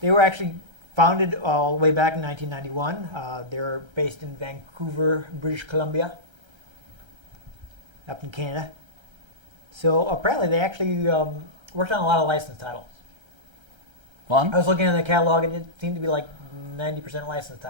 They were actually founded all the way back in 1991. They're based in Vancouver, British Columbia, up in Canada. So apparently they actually worked on a lot of licensed titles. Fun. I was looking at the catalog, and it seemed to be like 90% licensed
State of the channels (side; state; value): left; late; 1.3 ms